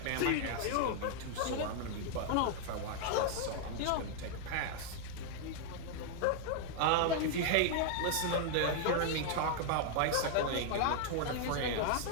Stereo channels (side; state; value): both; different; correlation 0.00